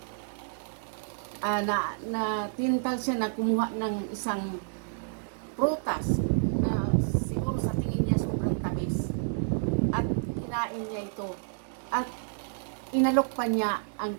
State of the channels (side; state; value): left; silent; digital silence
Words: na tintal siya na kumuha ng isang prutas na siguro sa tingin niya sobrang tamis at kinain niya ito at inalok pa niya ang